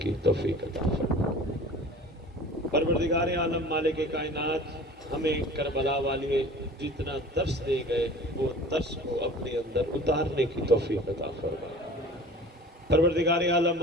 توفیق عطا فرما پروردگار عالم مالک کائنات ہمیں کربلا والے جتنا درس دے گئے وہ درس کو اپنے اندر اتارنے کی توفیق عطا فرما پروردگار عالم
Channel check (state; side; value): normal; both; correlation 0.42